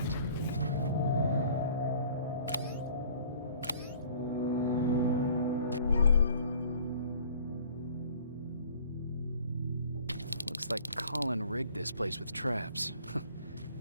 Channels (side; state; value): both; inverted; correlation -0.53